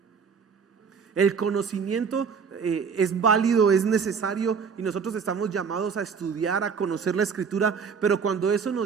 El conocimiento es válido, es necesario, y nosotros estamos llamados a estudiar, a conocer la Escritura, pero cuando eso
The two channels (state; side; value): quieter; left; 6.1 dB